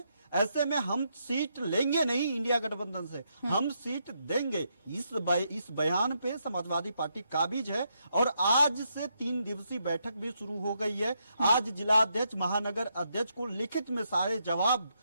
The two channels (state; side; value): inverted; both; correlation -0.79